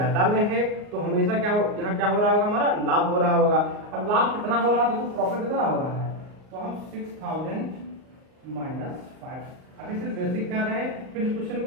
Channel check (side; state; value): left; late; 38 ms